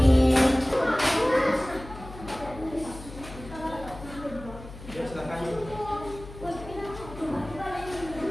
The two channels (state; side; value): noise; left; hum, 15 dB below the sound